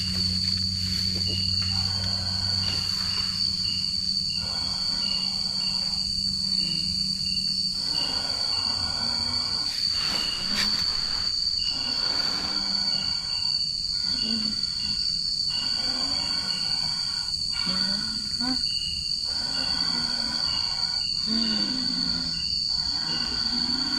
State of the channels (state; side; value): noise; left; rumble, 18 dB below the sound